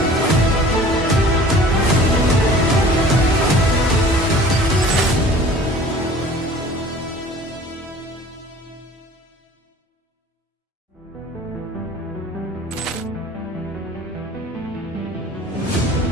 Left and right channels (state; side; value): normal; both; correlation 0.46